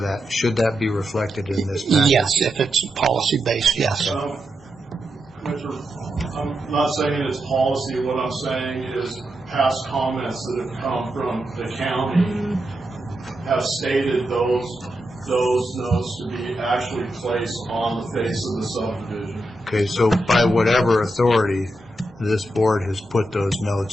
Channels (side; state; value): both; normal; correlation 0.86